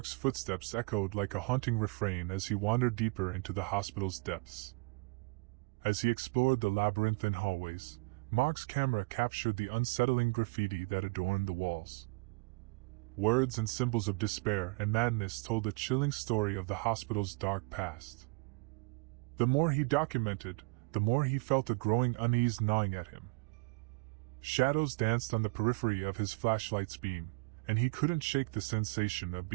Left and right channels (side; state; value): left; quieter; 29.8 dB